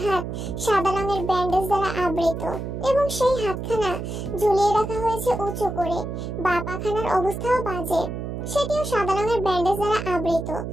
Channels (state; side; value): noise; right; hum, 6 dB below the sound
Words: হাত সাদা রঙের ব্যান্ডেজ দ্বারা আবৃত এবং সেই হাতখানা ঝুলিয়ে রাখা হয়েছে উঁচু করে। বাঁ পাখানার অবস্থাও বাজে, সেটিও সাদা রঙের ব্যান্ডেজ দ্বারা আবৃত।